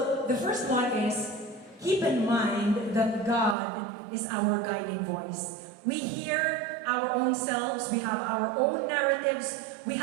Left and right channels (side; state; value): left; drops out; at 3.6 s